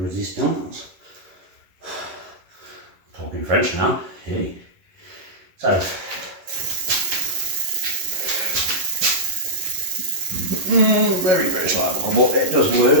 Talking French now. Hey. So. Very, very slight buckle, but it does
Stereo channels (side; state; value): left; late; 11 ms